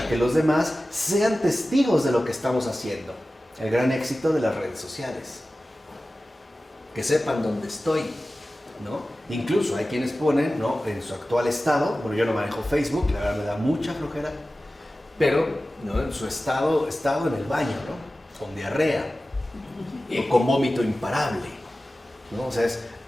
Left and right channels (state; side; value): normal; both; correlation 0.96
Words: que los demás sean testigos de lo que estamos haciendo. El gran éxito de las redes sociales. Que sepan dónde estoy, ¿no? Incluso hay quienes ponen, ¿no?, en su actual estado, bueno, yo no manejo Facebook, la verdad me da mucha flojera, pero, ¿no?, en su estado en el baño, ¿no?, con diarrea, y con vómito imparable, ¿no? O sea, es